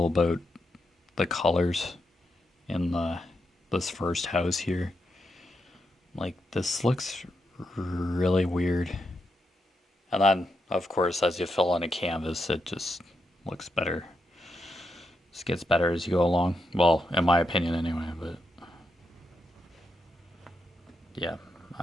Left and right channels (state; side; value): normal; both; correlation 0.84